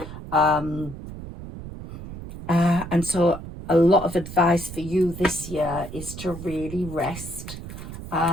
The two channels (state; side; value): noise; right; rumble, 11 dB below the sound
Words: And so a lot of advice for you this year is to really rest,